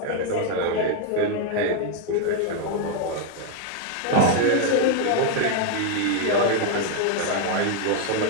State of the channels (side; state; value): both; different; correlation 0.00